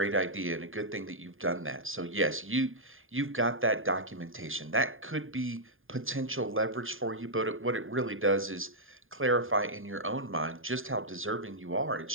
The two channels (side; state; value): left; late; 0.59 ms